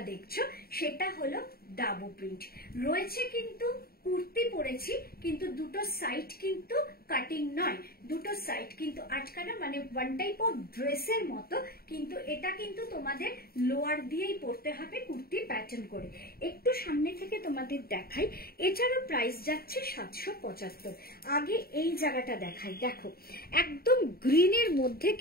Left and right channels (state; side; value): late; right; 0.44 ms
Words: দেখছো সেটা হলো ডাবু প্রিন্ট রয়েছে। কিন্তু কুর্তি পরেছি, কিন্তু দুটো সাইড কিন্তু কাটিং নয়, দুটো সাইড কিন্তু আটকানো, মানে ওয়ান টাইপ অফ ড্রেসের মতো, কিন্তু এটা কিন্তু তোমাদের লোয়ার দিয়েই পরতে হবে কুর্তি প্যাটার্ন করে। একটু সামনে থেকে তোমাদের দেখাই, এটারও প্রাইস যাচ্ছে 775। আগে এই জায়গাটা দেখাই, দেখো একদম গ্রিনের মধ্যে